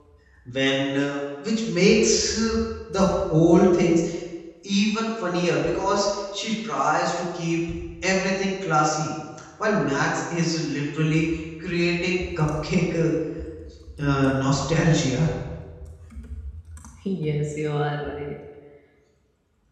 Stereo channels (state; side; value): identical; both; correlation 1.00